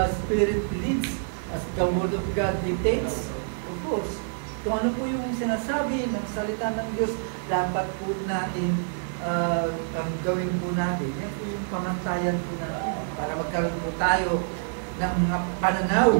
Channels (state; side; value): silent; left; digital silence